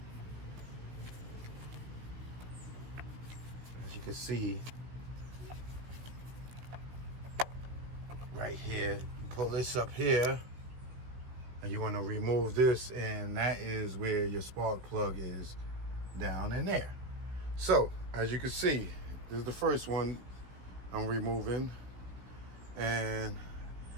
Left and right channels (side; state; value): left; late; 16 ms